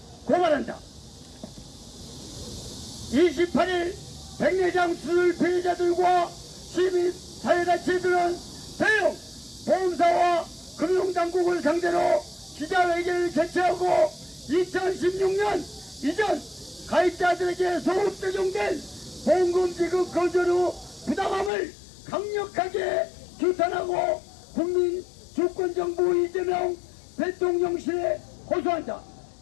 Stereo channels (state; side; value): drops out; right; at 21.5 s